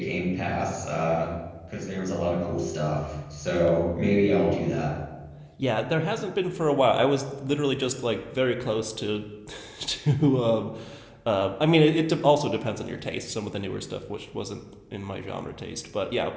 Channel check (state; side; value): identical; both; correlation 1.00